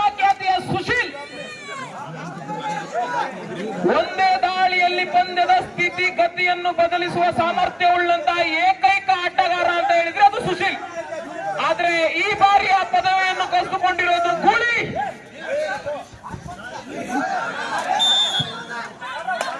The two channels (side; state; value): both; identical; correlation 1.00